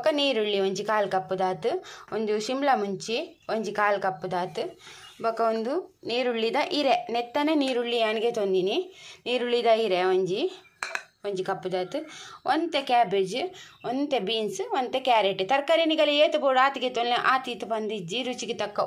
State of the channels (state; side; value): identical; both; correlation 1.00